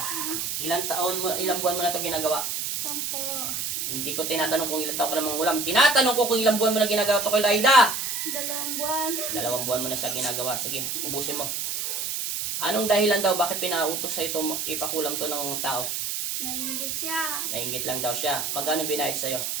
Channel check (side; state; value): right; noise; hiss, 2 dB below the sound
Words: Ilang buwan mo na ito ginagawa? 10. Hindi ko tinatanong kung ilang taon ka namang ulam. Tinatanong ko kung ilang buwan mo na ginagawa ito kay Loida. 2 buwan. 2 buwan mo na siya ginagawa. Sige, ubusin mo. Anong dahilan daw bakit pinautos sa ito ipakulam to ng tao? Nainggit siya. Nainggit lang daw siya. Magkano binayad sa'yo?